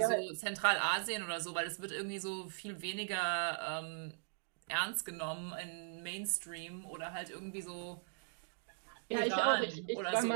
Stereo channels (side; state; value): left; silent; digital silence